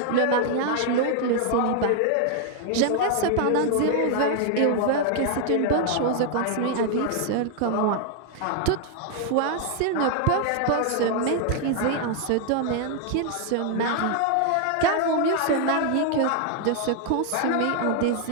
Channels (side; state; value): both; different; correlation 0.00